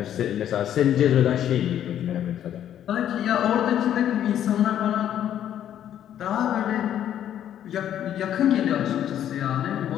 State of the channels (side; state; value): right; quieter; 10.6 dB